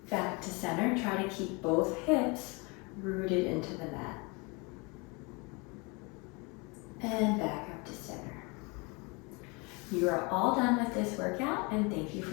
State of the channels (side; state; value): right; quieter; 29.1 dB